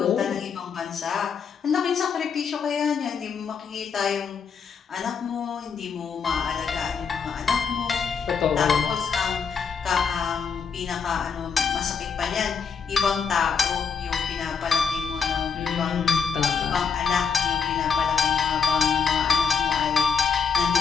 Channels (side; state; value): right; quieter; 6.1 dB